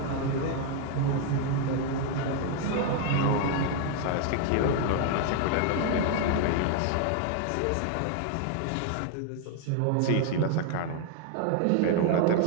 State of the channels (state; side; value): different; both; correlation 0.00